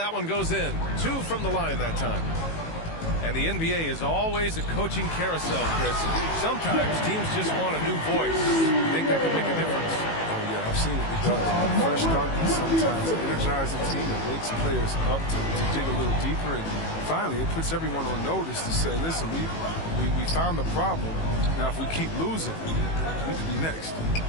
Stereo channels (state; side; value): late; right; 18 ms